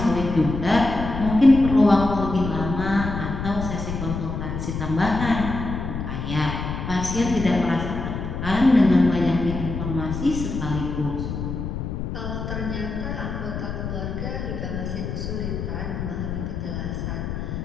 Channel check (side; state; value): left; noise; rumble, 5 dB below the sound